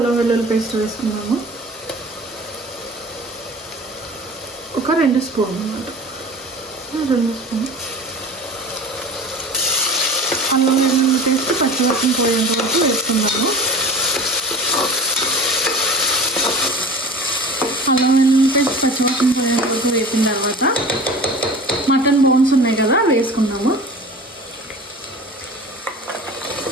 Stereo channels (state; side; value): normal; both; correlation 0.38